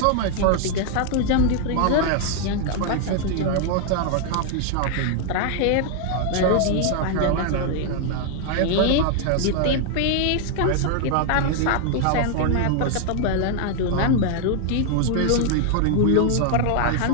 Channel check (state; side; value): different; both; correlation 0.00